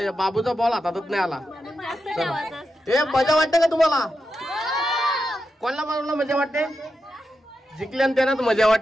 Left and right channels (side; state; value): both; normal; correlation 0.88